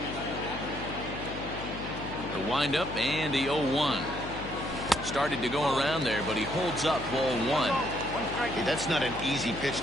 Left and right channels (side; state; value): left; noise; hum, 9 dB below the sound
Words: The windup and the 0-1. Started to go around there, but he holds up ball 1. Hey, that's not an easy pitch